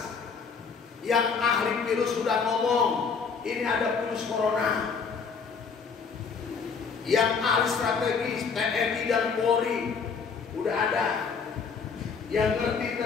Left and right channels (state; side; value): quieter; right; 5.6 dB